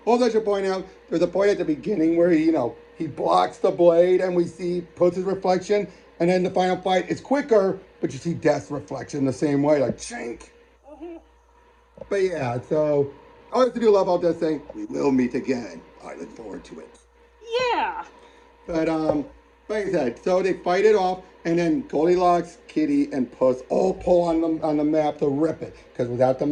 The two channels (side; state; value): both; identical; correlation 1.00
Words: Also, I should point out, there's a point at the beginning where he blocks the blade and we see Puss's reflection, and then the final fight is quicker, but you see Death's reflection the same way, like chink. But yeah, so I also do love all Death saying, we will meet again. I look forward to it. Yeah. But like I said, so they fight it off, and then Goldilocks, Kitty, and Puss all pull on the map to rip it. Because without the